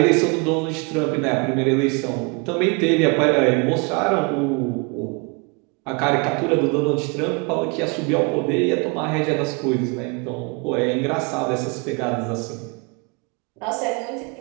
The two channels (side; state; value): left; quieter; 31.2 dB